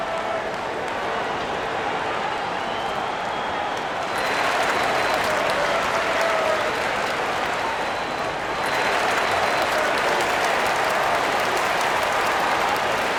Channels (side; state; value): both; identical; correlation 1.00